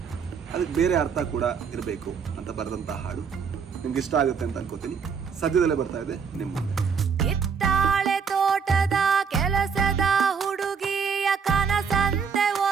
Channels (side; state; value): left; quieter; 6.2 dB